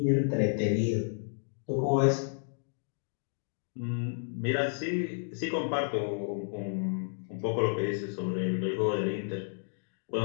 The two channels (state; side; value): silent; right; digital silence